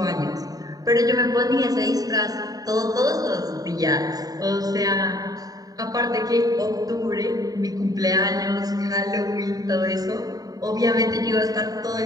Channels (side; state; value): left; late; 0.18 ms